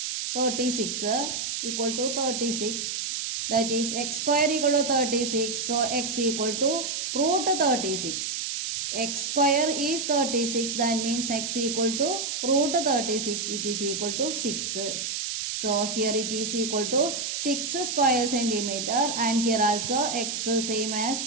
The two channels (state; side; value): noise; right; hiss, 3 dB below the sound